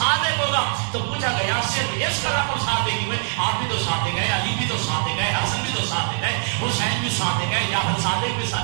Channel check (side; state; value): left; silent; digital silence